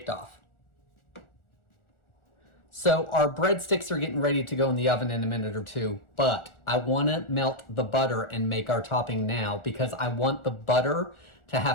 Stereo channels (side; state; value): right; late; 1.4 ms